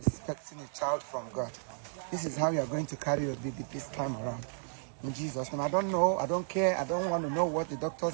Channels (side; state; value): left; silent; digital silence